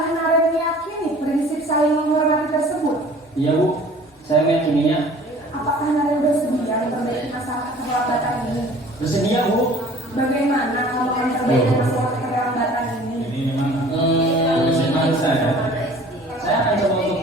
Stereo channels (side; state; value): both; normal; correlation 0.48